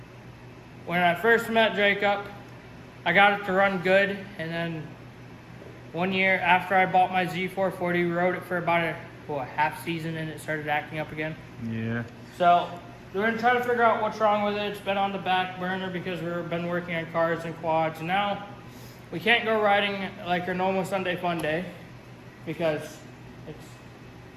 when I first met Jacob, I got it to run good, and then one year after I bought my Z440, we rode it for about a half season and it started acting up again. Yeah. So we're going to try to figure out what's wrong with it. It's been on the back burner because we've been working on cars and quads. And now we can't go riding like our normal Sunday fun day because it's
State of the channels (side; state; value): both; identical; correlation 1.00